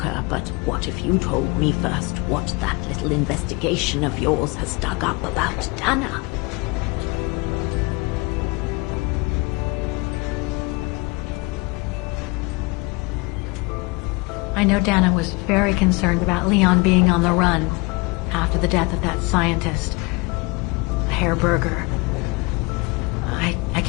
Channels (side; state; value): right; quieter; 27.0 dB